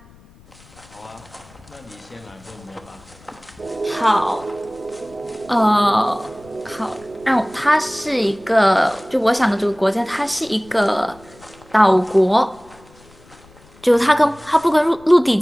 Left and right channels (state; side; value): noise; left; rumble, 26 dB below the sound